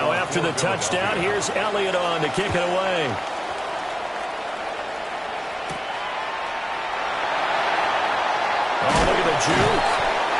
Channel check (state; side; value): identical; both; correlation 1.00